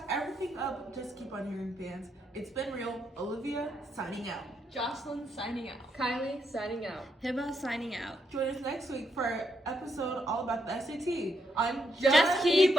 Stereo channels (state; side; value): normal; both; correlation 0.78